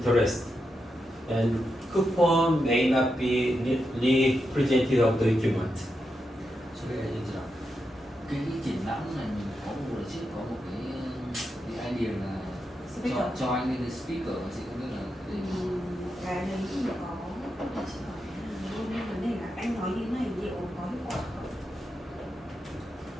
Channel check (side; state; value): both; normal; correlation 0.86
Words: And coupon may not be representative of the equipment. So bây giờ như thế nào? Cái triển lãm này mình có một lần trước có một cái idea là cho anh lên cái speaker, chị không biết là cái đấy thì có chỉ hỏi luôn nên vấn đề là anh nói như này liệu có hiệu quả không?